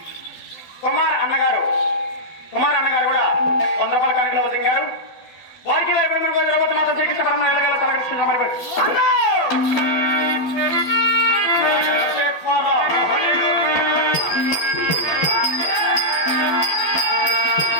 కుమార్ అన్నగారు కూడా 100 రూపాయల కానుకలో వదిలింగారు. వారికి ద్రౌపది మాత శ్రీకృష్ణ పరమ తలకృష్ణ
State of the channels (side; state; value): right; late; 12 ms